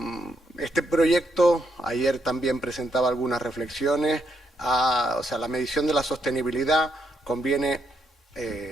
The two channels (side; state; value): both; normal; correlation 0.77